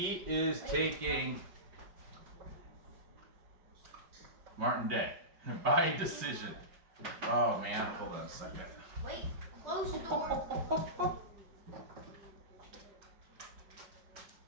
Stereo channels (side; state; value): left; late; 5.6 ms